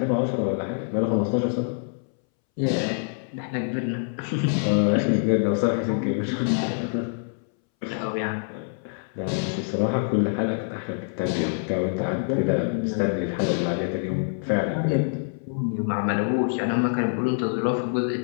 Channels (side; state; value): right; silent; 61 dB below the other